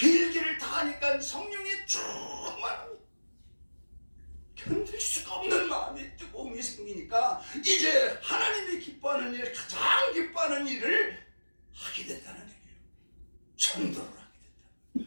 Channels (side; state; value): both; inverted; correlation -1.00